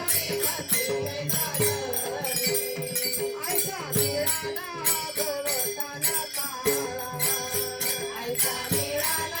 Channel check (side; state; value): both; identical; correlation 1.00